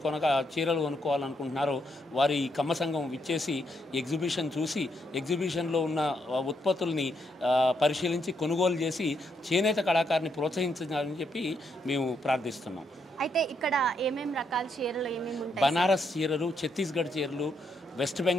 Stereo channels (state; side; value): normal; both; correlation 0.77